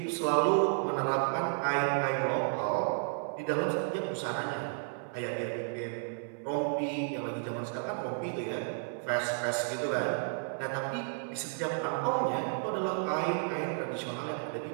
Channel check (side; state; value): left; silent; 56 dB below the other